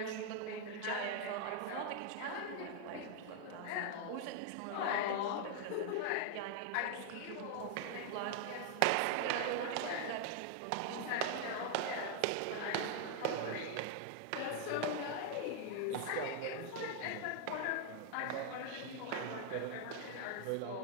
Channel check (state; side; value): different; both; correlation 0.00